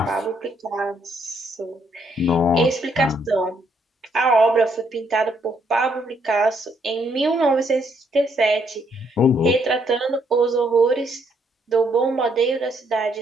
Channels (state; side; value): normal; both; correlation 0.72